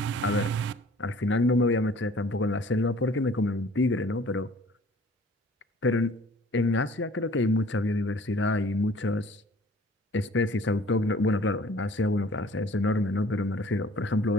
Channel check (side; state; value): both; normal; correlation 0.51